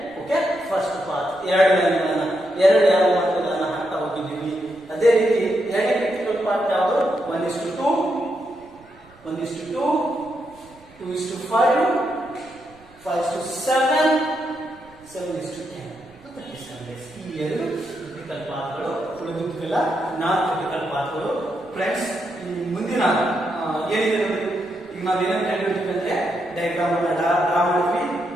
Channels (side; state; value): right; noise; rumble, 28 dB below the sound